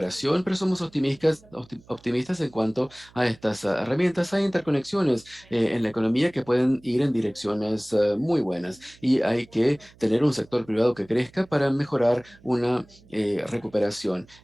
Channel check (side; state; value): right; noise; hum, 27 dB below the sound